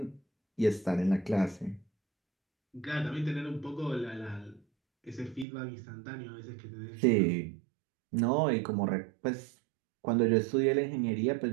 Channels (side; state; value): left; drops out; at 5.5 s